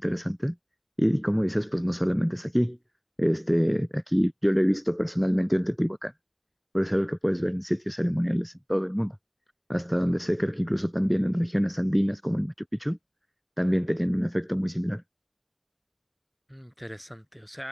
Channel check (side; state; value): both; identical; correlation 1.00